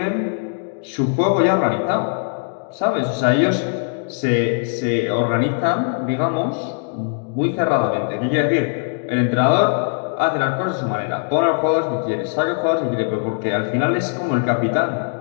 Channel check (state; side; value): silent; right; digital silence